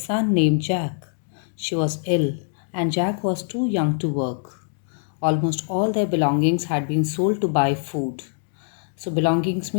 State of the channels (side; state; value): right; silent; digital silence